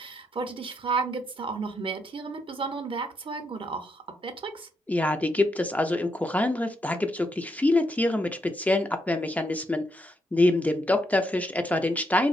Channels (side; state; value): both; normal; correlation 0.79